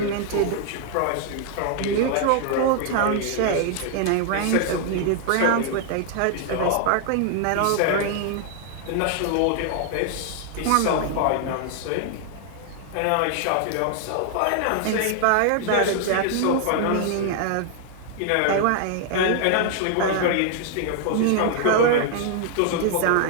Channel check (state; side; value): different; both; correlation 0.00